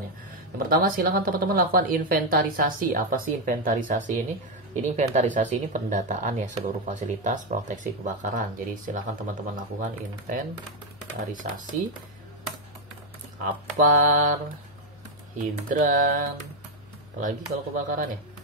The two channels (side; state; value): left; noise; hum, 25 dB below the sound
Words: ya. Yang pertama, silakan teman-teman lakukan inventarisasi. Apa sih inventarisasi ini? Ini inventarisasi ini pendataan ya seluruh fasilitas proteksi kebakaran. Jadi silakan teman-teman lakukan inventarisasi APAR, hidran, apalagi kalau kebakaran ya,